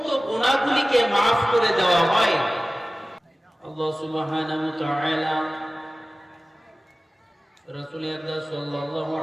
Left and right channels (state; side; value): normal; both; correlation 0.97